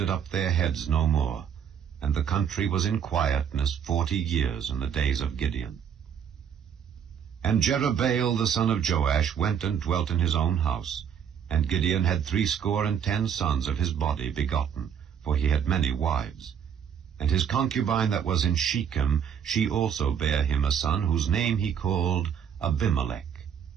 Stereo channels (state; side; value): quieter; left; 8.1 dB